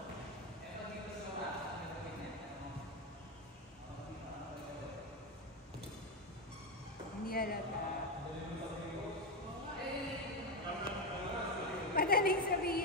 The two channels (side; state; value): both; normal; correlation 0.10